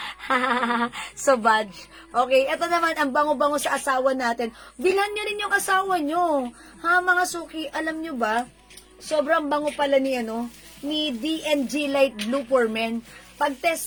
Sauvage. Okay, ito naman, ang bango-bango sa asawa natin. Bilhan nyo rin yung asawa nyo. Ha, mga suki, alam nyo ba? Sobrang bango pala ni D&G Light Blue for Men.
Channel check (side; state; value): both; identical; correlation 1.00